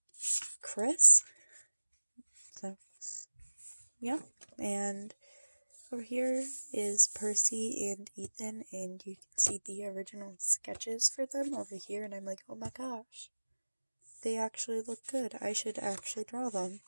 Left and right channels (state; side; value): inverted; both; correlation -1.00